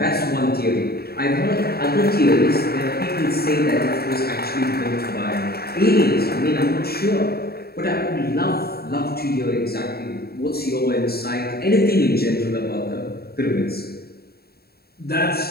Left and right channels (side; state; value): right; late; 0.45 ms